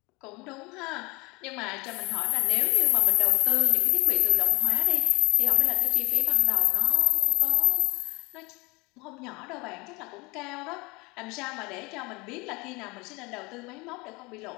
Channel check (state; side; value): quieter; right; 29.3 dB